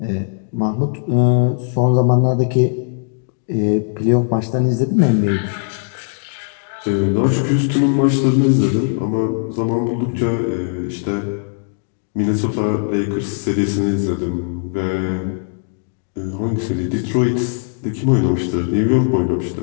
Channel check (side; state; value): right; silent; digital silence